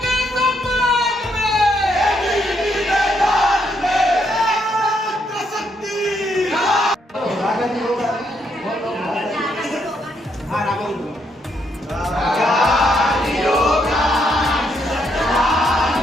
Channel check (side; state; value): both; normal; correlation 0.75